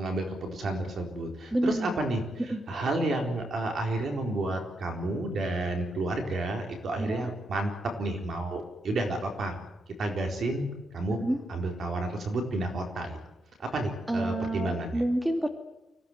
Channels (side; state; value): both; normal; correlation 0.81